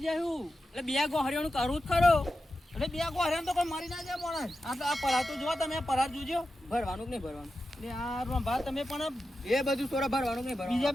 જાય હું એટલે 2 ગોહરીઓનું કરવું જ ખરો એટલે બે ગોહરિયા તો કોઈ મરી ના જાય માણસ આ પરાર તો જો તમે પરાર જોજો ભરવાનું કે નહીં ભરવાનું એટલે આ રંભા તમે પણ એ બધું સોરા ભરવાનું કે નહીં ભરવાનું બીજા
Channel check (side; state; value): both; normal; correlation 0.91